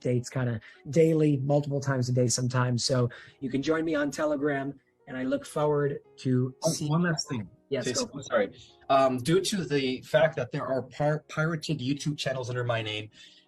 kind of daily, multiple times a day sometimes. So you can join me on Telegram, and I look forward to seeing. One last thing. Yes, Jason, sorry. Due to the fact that there are pirated YouTube channels under my name,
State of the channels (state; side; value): identical; both; correlation 1.00